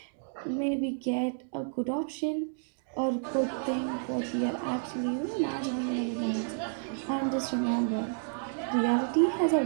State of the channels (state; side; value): silent; left; digital silence